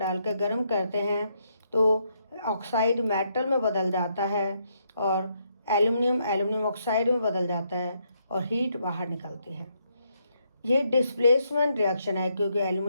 गर्म करते हैं तो ऑक्साइड मेटल में बदल जाता है और एल्युमिनियम ऑक्साइड में बदल जाता है और हीट बाहर निकलती है। ये डिस्प्लेसमेंट रिएक्शन है क्योंकि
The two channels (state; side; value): inverted; both; correlation -0.76